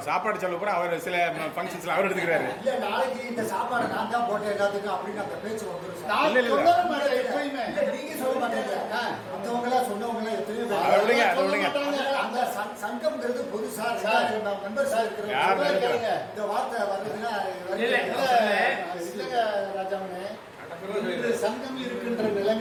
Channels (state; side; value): identical; both; correlation 1.00